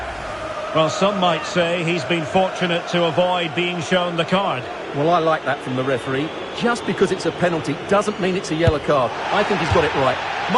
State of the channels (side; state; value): both; identical; correlation 1.00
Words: Well, some might say he's been fortunate to avoid being shown the card. Well, I like that from the referee. Just because it's a penalty doesn't mean it's a yellow card. I think he's got it right.